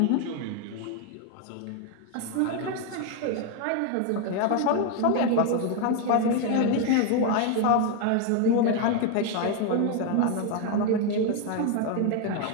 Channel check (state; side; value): different; both; correlation 0.01